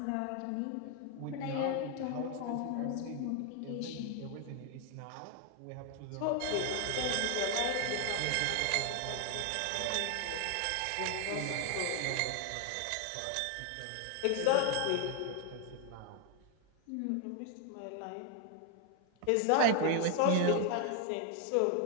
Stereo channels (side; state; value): both; different; correlation 0.00